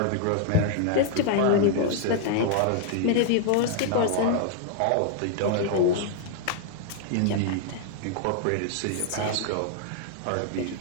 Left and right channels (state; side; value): different; both; correlation 0.00